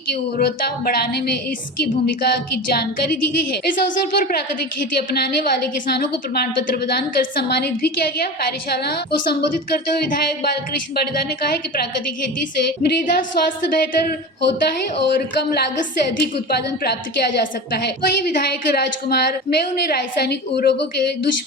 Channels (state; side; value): normal; both; correlation 0.29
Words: की उर्वरता बढ़ाने में इसकी भूमिका की जानकारी दी गई है। इस अवसर पर प्राकृतिक खेती अपनाने वाले किसानों को प्रमाण पत्र प्रदान कर सम्मानित भी किया गया। कार्यशाला को संबोधित करते हुए विधायक बालकृष्ण पाटीदार ने कहा है कि प्राकृतिक खेती से मृदा स्वास्थ्य बेहतर होता है और कम लागत से अधिक उत्पादन प्राप्त किया जा सकता है। वहीं विधायक राजकुमार मेव ने रासायनिक उर्वरकों के